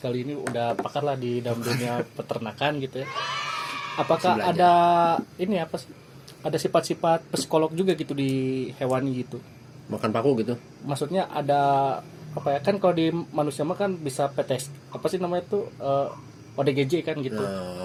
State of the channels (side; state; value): both; identical; correlation 1.00